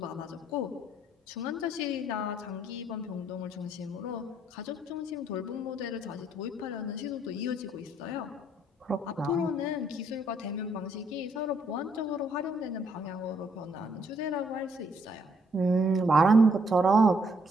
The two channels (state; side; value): normal; both; correlation 0.69